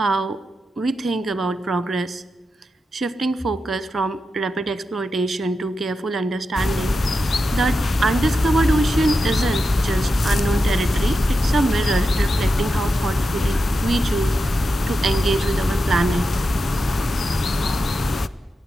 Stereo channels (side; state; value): both; normal; correlation 0.89